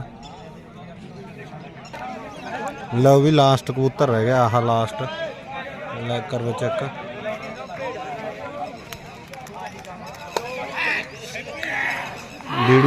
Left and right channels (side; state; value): both; identical; correlation 1.00